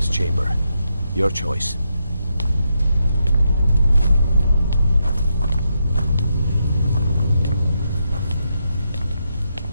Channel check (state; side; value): inverted; both; correlation -0.82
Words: chamber. Your choice.